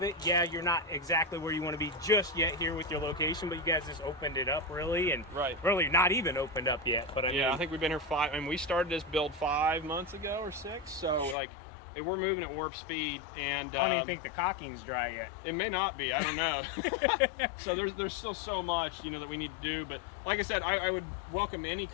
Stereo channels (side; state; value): right; drops out; at 11.4 s